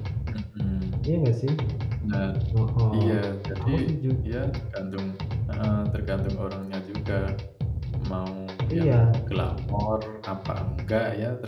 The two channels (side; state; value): both; identical; correlation 1.00